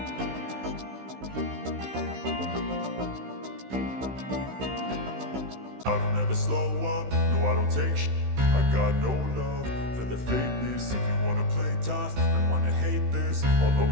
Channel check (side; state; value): left; late; 16 ms